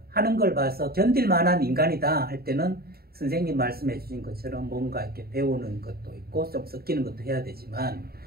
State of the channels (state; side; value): late; left; 0.45 ms